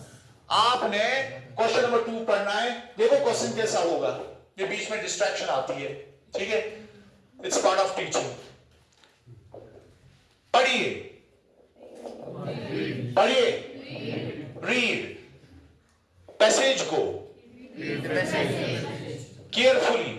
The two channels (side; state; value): both; identical; correlation 1.00